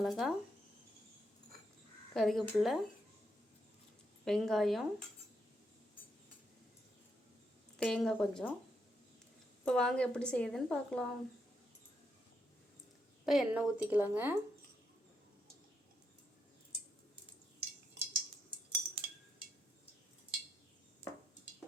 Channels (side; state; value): both; normal; correlation 0.79